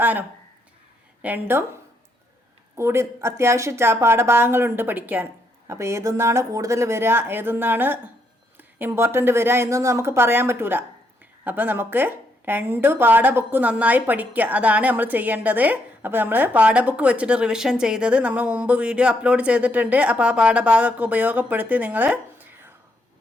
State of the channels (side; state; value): both; normal; correlation 0.76